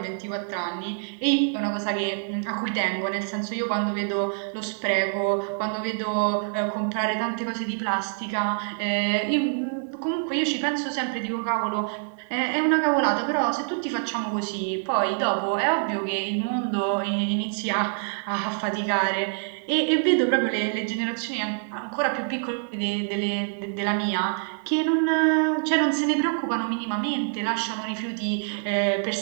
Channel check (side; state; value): left; silent; 61 dB below the other